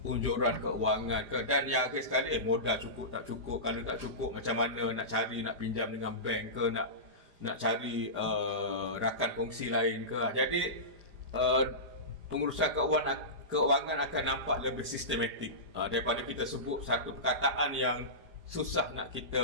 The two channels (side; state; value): left; late; 5.0 ms